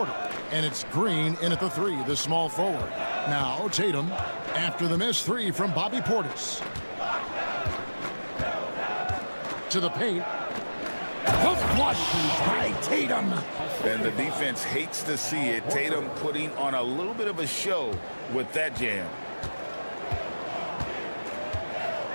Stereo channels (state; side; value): inverted; both; correlation -1.00